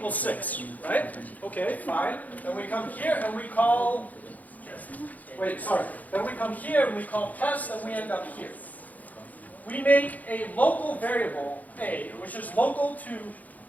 6, right? Okay, fine. Then we come here and we call, wait, sorry. Then we come here and we call test and we end up here. We make a local variable, a, which is local to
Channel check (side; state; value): right; late; 0.079 ms